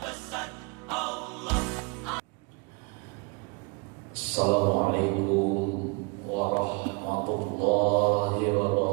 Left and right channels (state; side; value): quieter; left; 30.4 dB